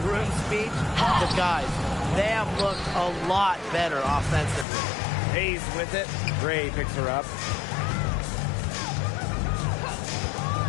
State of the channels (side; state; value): right; drops out; at 4.7 s